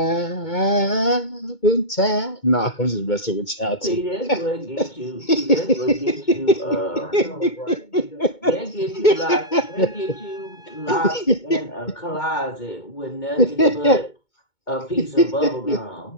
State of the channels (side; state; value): right; late; 2.2 ms